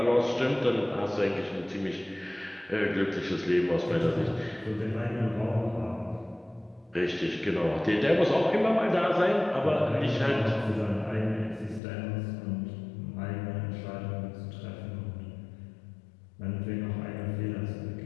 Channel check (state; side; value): drops out; right; at 11.8 s